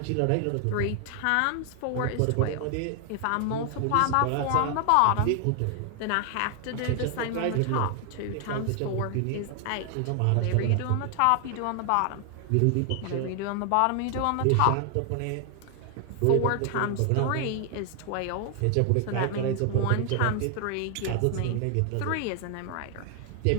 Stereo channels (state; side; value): different; both; correlation 0.00